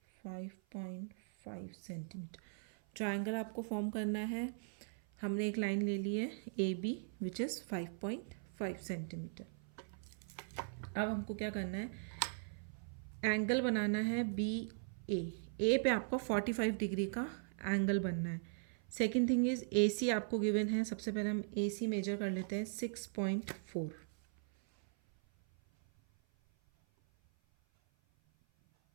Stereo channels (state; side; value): silent; left; 52 dB below the other